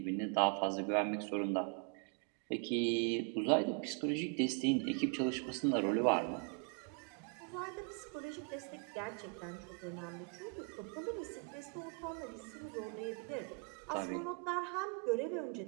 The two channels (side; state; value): left; quieter; 36.5 dB